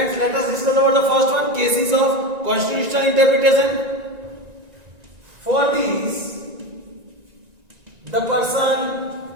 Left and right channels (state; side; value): late; left; 1.9 ms